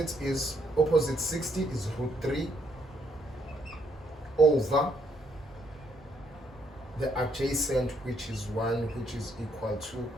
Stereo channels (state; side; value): normal; both; correlation 0.72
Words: 60 is root 3 over the adjacent, which is 1, which is equal to